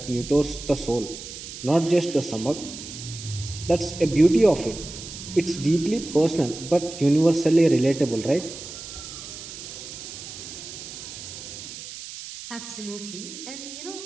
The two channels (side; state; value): right; noise; hiss, 11 dB below the sound